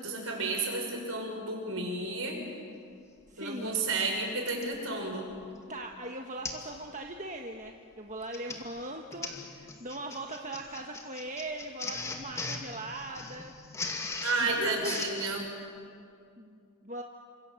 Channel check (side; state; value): both; normal; correlation 0.03